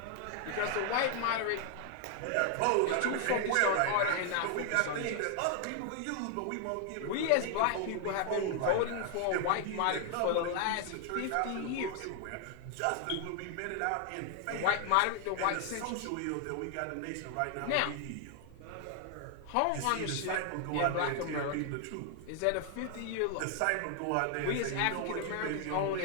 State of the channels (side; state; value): both; different; correlation 0.00